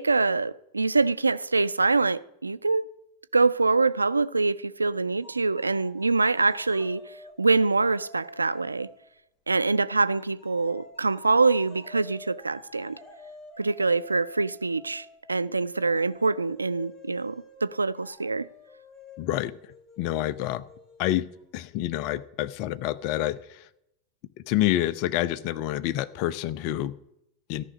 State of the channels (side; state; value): both; inverted; correlation -0.76